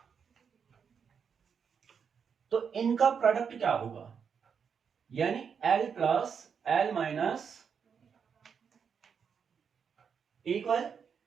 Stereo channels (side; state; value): left; quieter; 6.7 dB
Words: तो इनका प्रोडक्ट क्या होगा? यानी L plus L minus equal